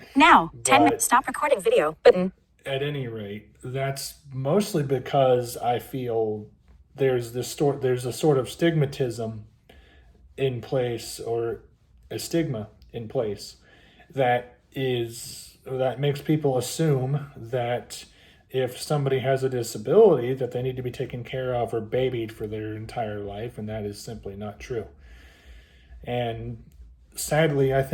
Now. 10 minutes. Stop recording video. Button. At any rate, that's mostly because I feel there's a sort of stigmatism in place, or a stigma in place, that makes people assume that if somebody has a disability that they need to be taken care of or babied for their entire life, and that is simply not true. And sadly, I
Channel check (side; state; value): both; identical; correlation 1.00